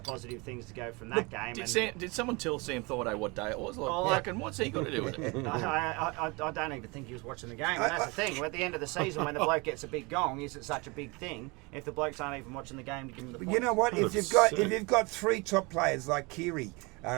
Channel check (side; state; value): left; quieter; 27.1 dB